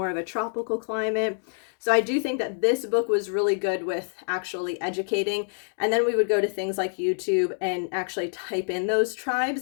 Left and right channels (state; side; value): silent; right; 61 dB below the other